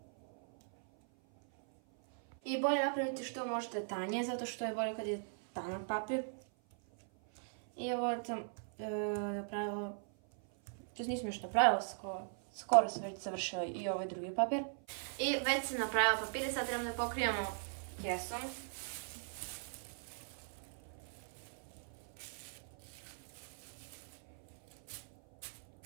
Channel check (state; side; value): silent; left; 52 dB below the other